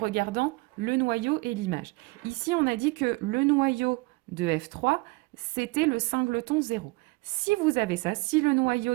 le noyau et l'image. Ici, on a dit que le noyau de f3, c'était le singleton 0. Si vous avez ça, si le noyau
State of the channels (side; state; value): left; quieter; 25.2 dB